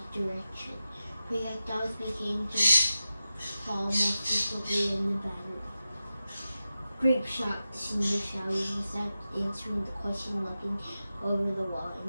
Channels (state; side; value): inverted; both; correlation -0.92